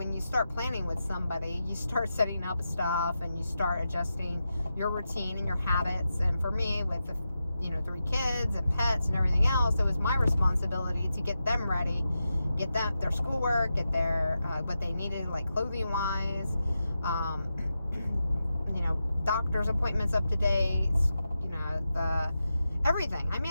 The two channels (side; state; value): both; inverted; correlation -0.89